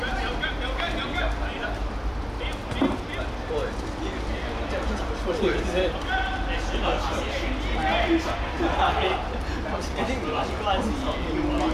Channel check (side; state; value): both; identical; correlation 1.00